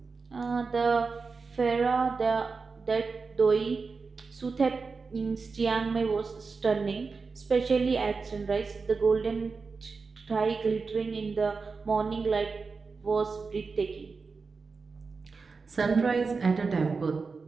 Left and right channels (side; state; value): left; quieter; 4.6 dB